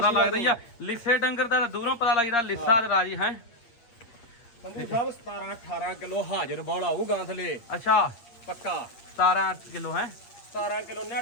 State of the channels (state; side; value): late; right; 8.6 ms